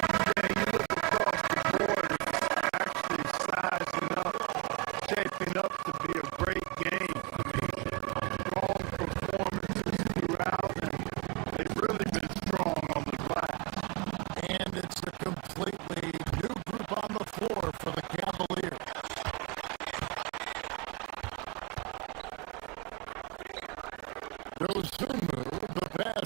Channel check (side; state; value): left; quieter; 28.7 dB